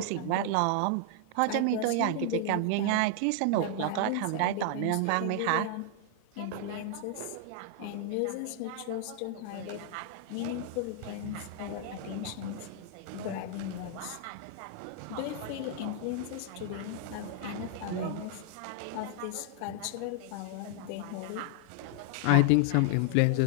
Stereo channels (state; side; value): different; both; correlation 0.00